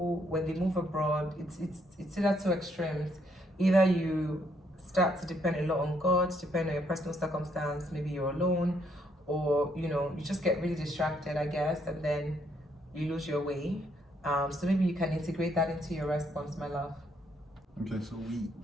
when they move abroad, it's either two extremes. Either you start to depend a lot on God, depend on your personal circumstance, maybe you're alone, or you just get really distracted, I guess, and then you lose your way. So maybe you can integrate that into your response, my love. Okay, so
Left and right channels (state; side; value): normal; both; correlation 0.71